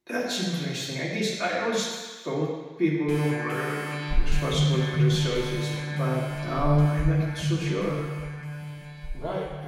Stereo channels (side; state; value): both; identical; correlation 1.00